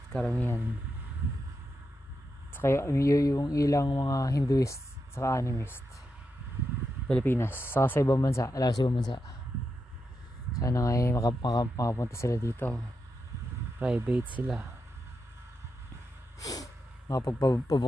karamihan. Saka yung ilang mga Hinduist, saka animist. Pilipinas, saka sa ibang bansa, alam sa ibang bansa. Sana nga makapunta sila dito. Private sila.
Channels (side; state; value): both; normal; correlation 0.86